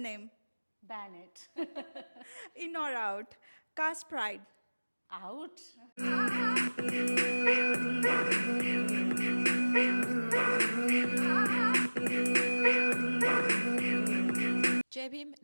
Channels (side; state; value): both; inverted; correlation -1.00